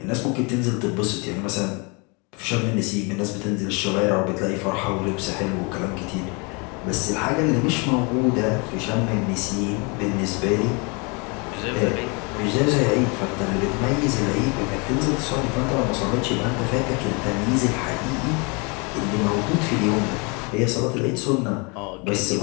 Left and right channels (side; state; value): right; quieter; 31.0 dB